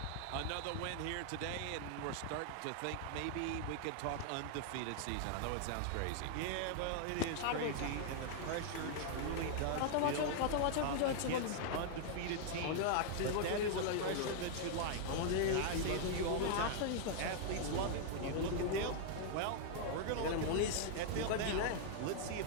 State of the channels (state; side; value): different; both; correlation -0.01